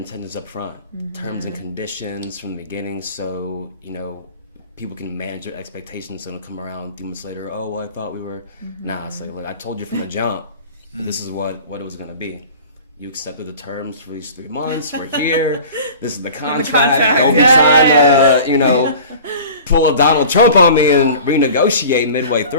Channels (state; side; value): inverted; both; correlation -0.42